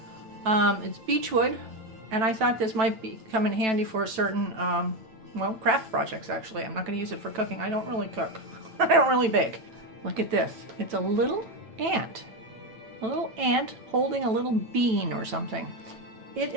It's beechwood, and I thought this might come in handy for certain, well, craft projects, actually. I'm not going to use it for cooking. I don't really cook. I don't really bake. Look at this. It's a little ant. A little ant holding a little bean or something. It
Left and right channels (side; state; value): left; late; 9.1 ms